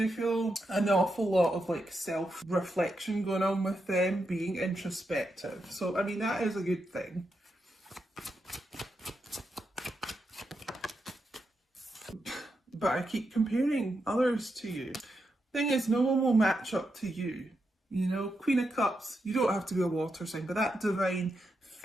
feel an awful lot of like self-reflection going on with them, being introspective. So I mean, that is a good thing. But I keep comparing others to you. Thing is, no one will match up to you. You know, Queen of Cups, you don't have to be a water sign, but that divine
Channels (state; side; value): normal; both; correlation 0.85